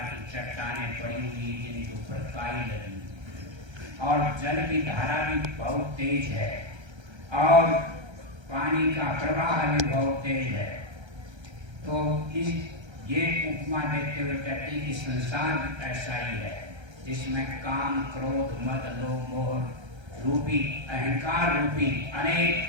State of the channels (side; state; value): left; late; 1.3 ms